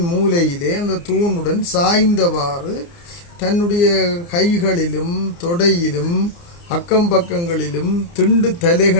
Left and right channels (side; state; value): right; late; 29 ms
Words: மூலையிலே அந்த தூணுடன் சாய்ந்தவாறு தன்னுடைய கைகளிலும் தொடையிலும் அக்கம் பக்கங்களிலும் திண்டு